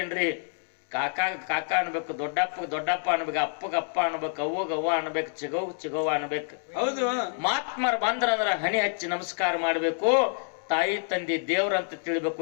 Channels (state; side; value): silent; right; 59 dB below the other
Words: ಕಾಕ ಕಾಕ ಅನ್ಬೇಕು, ದೊಡ್ಡಪ್ಪ ಅನ್ಬೇಕು, ಅಪ್ಪಗ ಅಪ್ಪ ಅನ್ಬೇಕು, ಅವ್ವಗ ಅವ್ವ ಅನ್ಬೇಕು, ಚಿಗವ್ವ ಅನ್ಬೇಕು. ಹೌದು. ಮಾತ್ಮರ್ ಬಂದ್ರಂದ್ರ ಹನಿ ಹಚ್ಚಿ ನಮಸ್ಕಾರ ಮಾಡ್ಬೇಕು. ತಾಯಿ ತಂದೆ ದೇವ್ರಂತ ತಿಳಿಬೇಕು.